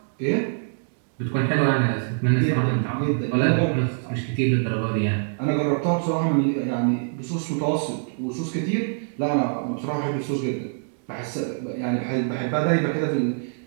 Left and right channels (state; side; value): silent; left; digital silence